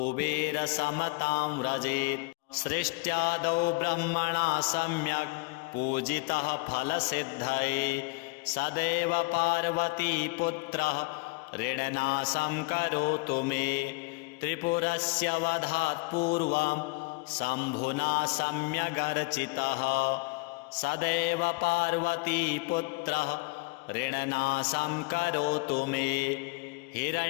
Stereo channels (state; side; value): quieter; right; 27.3 dB